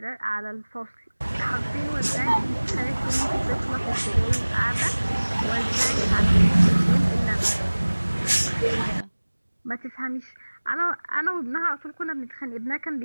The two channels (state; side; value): inverted; both; correlation -1.00